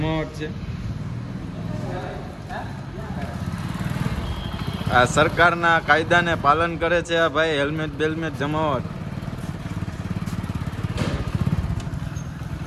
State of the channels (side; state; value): both; identical; correlation 1.00